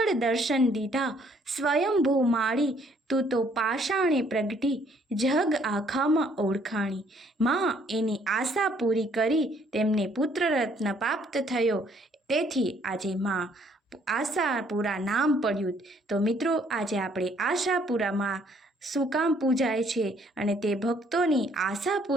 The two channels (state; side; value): normal; both; correlation 0.64